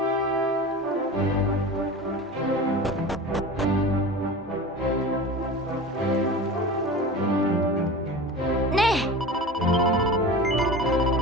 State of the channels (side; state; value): both; normal; correlation 0.32